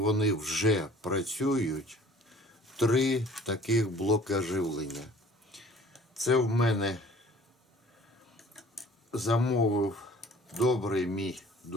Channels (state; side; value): normal; both; correlation 0.51